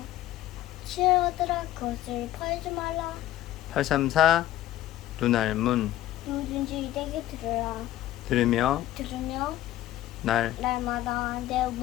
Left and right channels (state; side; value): quieter; right; 13.7 dB